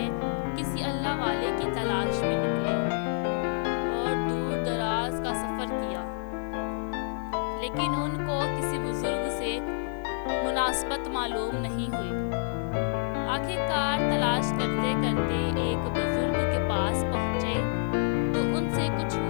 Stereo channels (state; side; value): silent; right; digital silence